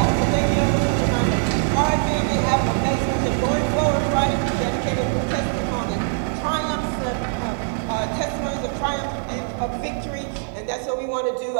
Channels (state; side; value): silent; left; digital silence